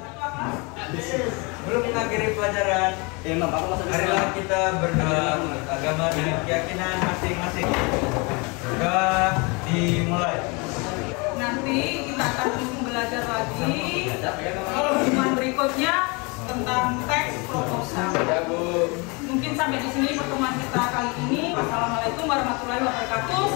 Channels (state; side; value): quieter; right; 29.4 dB